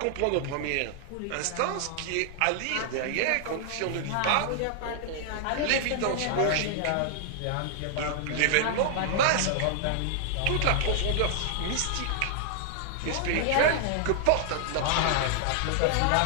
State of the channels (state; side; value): different; both; correlation -0.01